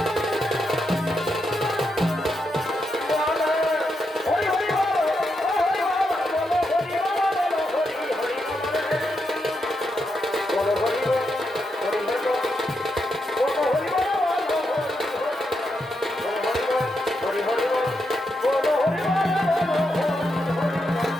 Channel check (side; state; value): both; normal; correlation 0.83